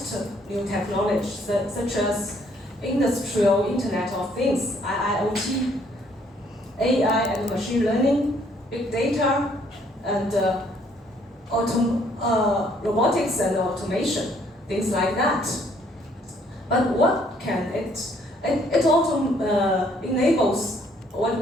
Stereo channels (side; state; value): both; normal; correlation 0.65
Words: new technologies such as industrial Internet of Things, IIoT, AI and machine learning, big data, and robotics and automation, things like that. But what can it? It also enables what